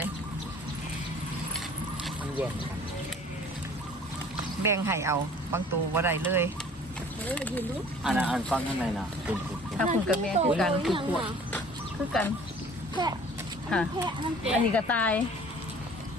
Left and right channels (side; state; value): both; normal; correlation 0.49